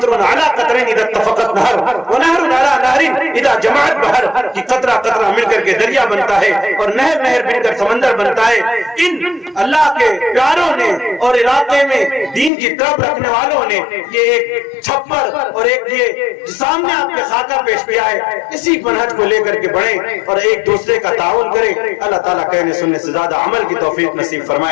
علی قطرین اذا اتفقت نہر ونہر علی نہر اذا جمعت بحر، کہ قطرہ قطرہ مل کر کے دریا بنتا ہے اور نہر نہر مل کر سمندر بنتا ہے۔ ان اللہ کے پیاروں نے اور علاقے میں دین کی طرف رکھنے والوں نے یہ ایک چھپر اور ایک یہ سامنے آپ کے خاکہ پیش کیا ہے، اسی منہج کو لے کر کے بڑھیں اور ایک دوسرے کا تعاون کریں۔ اللہ تعالیٰ کہنے سننے سے زیادہ عمل کی توفیق نصیب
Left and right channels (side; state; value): right; drops out; at 12.5 s